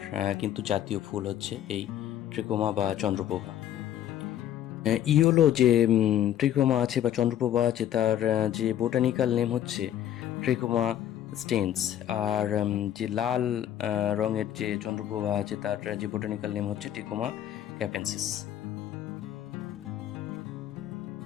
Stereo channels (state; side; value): quieter; right; 11.3 dB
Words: কিন্তু জাতীয় ফুল হচ্ছে এই ট্রিকোমা বা চন্দ্রপ্রভা। ইয়োলো যে ট্রিকোমা আছে বা চন্দ্রপ্রভা আছে, তার যে বোটানিক্যাল নেম হচ্ছে ট্রিকোমা স্টেন্স। আর যে লাল রঙের যে চন্দ্রপ্রভা আছে, তার যে বোটানিক্যাল নেম হচ্ছে ট্রিকোমা ক্যাপেন্সিস।